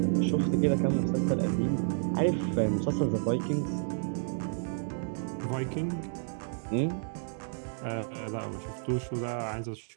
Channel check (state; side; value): silent; left; digital silence